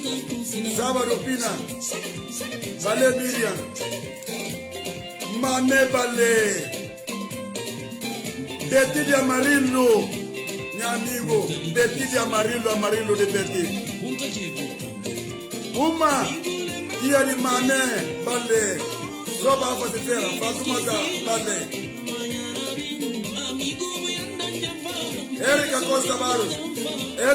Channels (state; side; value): identical; both; correlation 1.00